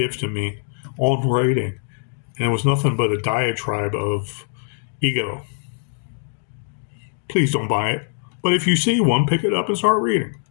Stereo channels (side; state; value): right; silent; digital silence